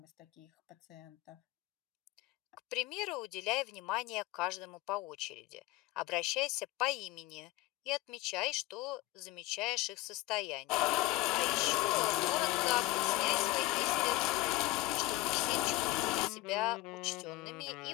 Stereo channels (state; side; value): quieter; right; 18.9 dB